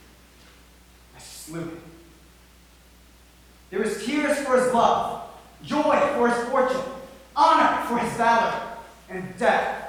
I slew him. There is tears for his love, joy for his fortune, honor for his valor, and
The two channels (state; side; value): identical; both; correlation 1.00